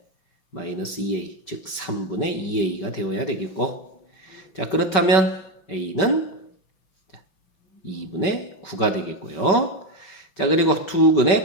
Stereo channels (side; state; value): right; late; 5.2 ms